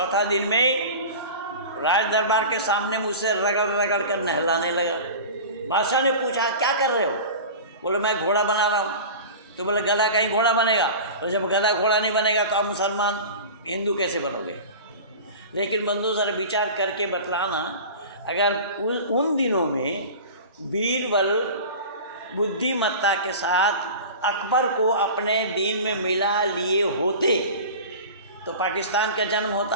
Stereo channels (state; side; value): inverted; both; correlation -0.34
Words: दिन में राज दरबार के सामने मुझसे रगड़ कर नहलाने लगा। बादशाह ने पूछा क्या कर रहे हो? बोले मैं घोड़ा बना रहा हूँ। तो बोले गधा कहीं घोड़ा बनेगा? और जब गधा घोड़ा नहीं बनेगा तो आप मुसलमान हिंदू कैसे बनोगे? लेकिन बंधु सर विचार करके बतलाना, अगर उन दिनों में बीरबल बुद्धिमत्ता के साथ अकबर को अपने दीन में मिला लिए होते तो पाकिस्तान का जन्म